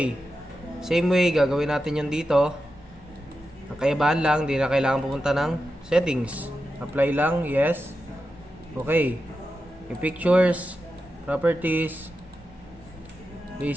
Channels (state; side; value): normal; both; correlation 0.90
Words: Same way, gagawin natin yun dito. Ang kaibahan lang, di na kailangan pupunta ng settings. Apply lang, yes. Okay. Yung pictures, properties,